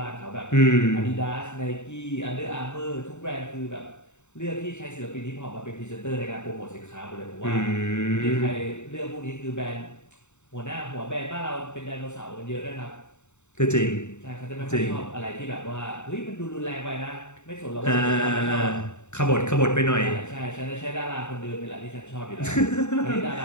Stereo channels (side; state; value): right; late; 0.83 ms